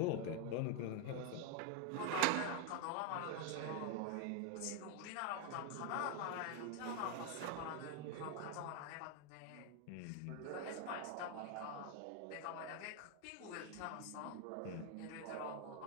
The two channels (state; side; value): different; both; correlation 0.01